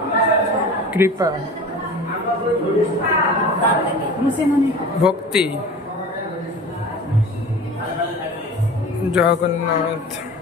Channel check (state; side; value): normal; both; correlation 0.38